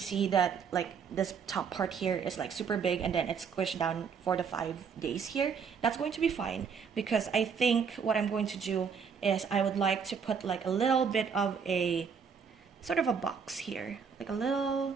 that like this top part here is like super big, and then it's squished down for the 5 days here. That's going to be fine, because I think what I'm going to do is I would like to put like a little bit of a sort of a box here, like a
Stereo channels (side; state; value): left; quieter; 6.3 dB